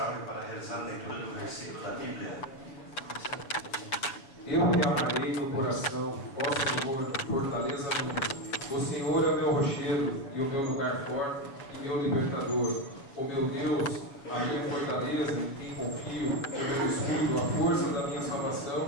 para realizar a leitura de um versículo da Bíblia. Eu te amarei no coração, ó Senhor, fortaleza minha. O Senhor é o meu rochedo e o meu lugar forte e meu libertador. O meu Deus, a minha fortaleza, em quem confio, o meu escudo, a força da minha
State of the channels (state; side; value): late; right; 7.2 ms